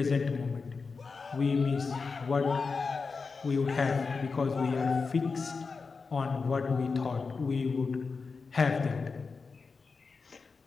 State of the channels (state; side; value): quieter; right; 4.7 dB